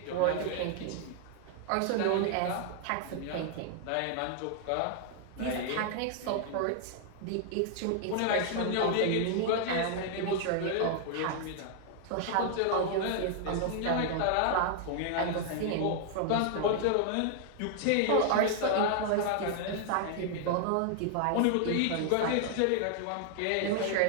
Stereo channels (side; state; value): both; different; correlation 0.00